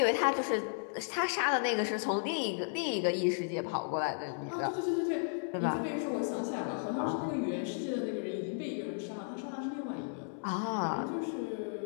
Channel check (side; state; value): right; silent; digital silence